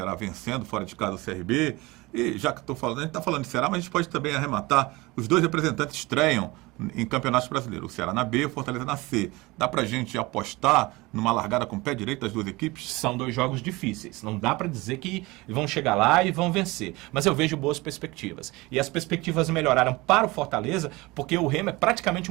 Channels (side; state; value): left; quieter; 22.3 dB